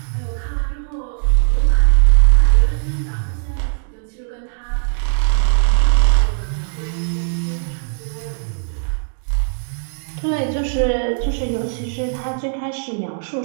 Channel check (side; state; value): left; silent; digital silence